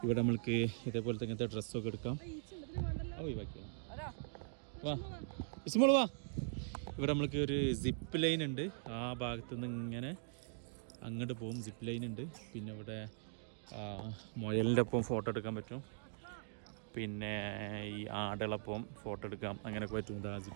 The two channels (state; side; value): silent; left; digital silence